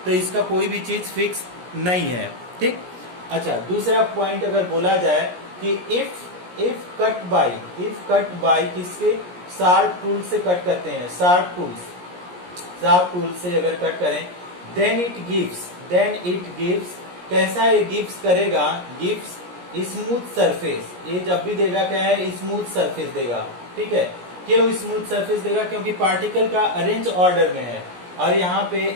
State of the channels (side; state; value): left; late; 17 ms